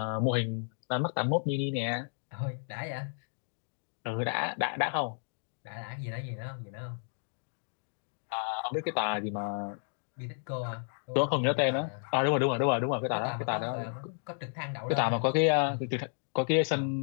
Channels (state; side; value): silent; right; digital silence